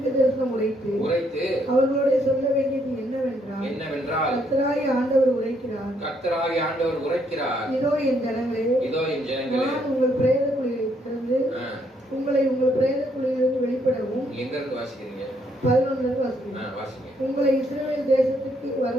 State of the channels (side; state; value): both; normal; correlation 0.71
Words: தரிசனம் உரைத்து அவர்களோட சொல்ல வேண்டியது என்னவென்றால் கர்த்தராகிய ஆண்டவர் உரைக்கிறார், இதோ என் ஜனங்களே, நான் உங்கள் பிரேத குழியை திறந்து உங்களை உங்கள் பிரேத குழியிலிருந்து வெளிப்படவும். எங்க இருந்து வாசிக்கிறீங்க? 11ல இருந்து வாசிங்க. உங்களை இஸ்ரவேல் தேசத்துக்கு